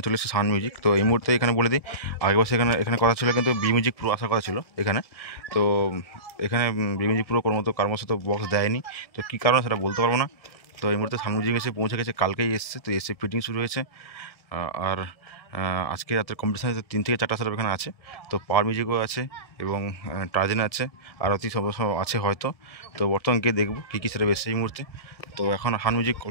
চলে এসেছে সাউন্ড মিউজিক। তো এই মুহূর্তে এখানে বলে দিই, আগের বছর এখানে কথা ছিল, কিন্তু বি মিউজিক পুরো আসার কথা ছিল এখানে। তো এখানে বি মিউজিক পুরো কর্মশ তো বক্স দেয়নি। তো কী কারণে সেটা বলতে পারবো না। তো এই মুহূর্তে সাউন্ড মিউজিক এসে পৌঁছে গেছে, কালকেই এসছে। তো এসে ফিটিং শুরু হয়েছে। আর আজকে রাতের কম্পিটিশান 3 থেকে 4টা সেটআপ এখানে আছে। তো পাওয়ার মিউজিকও আছে এবং টার্জেন আছে, আরতি সব আছে হয়তো। তো বর্তমান গিয়ে দেখবো কী কী সেটআপ এসছে এই মুহূর্তে। তো এখন সাউন্ড মিউজিক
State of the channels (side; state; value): right; late; 1.6 ms